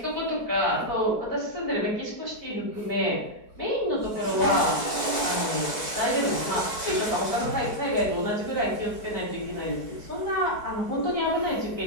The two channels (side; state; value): right; late; 4.6 ms